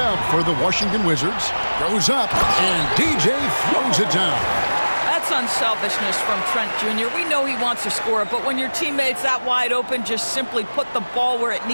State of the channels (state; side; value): inverted; both; correlation -1.00